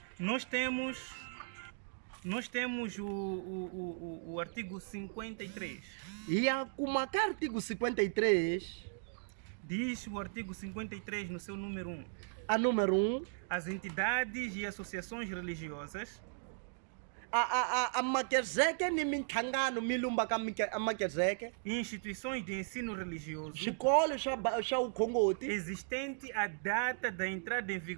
nós temos o artigo 53. hi ya kuma ka artigo 53, Diz o artigo 53 no seu número 1. a número 1, As entidades e associações religiosas a makezeke ni mintlhangano mi lumbaka a makezeke, e instituições de ensino religioso swikolo swa vukhongoti existente à data da entrada em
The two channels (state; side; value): silent; left; digital silence